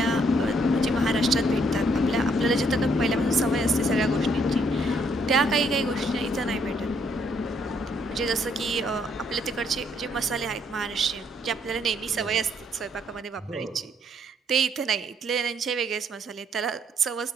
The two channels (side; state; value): both; normal; correlation 0.69